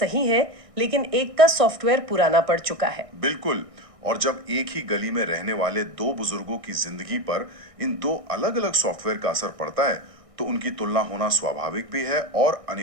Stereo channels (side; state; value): left; late; 1.6 ms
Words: है, लेकिन एक का सॉफ्टवेयर पुराना पड़ चुका है। बिल्कुल। और जब एक ही गली में रहने वाले दो बुजुर्गों की जिंदगी पर इन दो अलग अलग सॉफ्टवेयर का असर पड़ता है, तो उनकी तुलना होना स्वाभाविक भी है और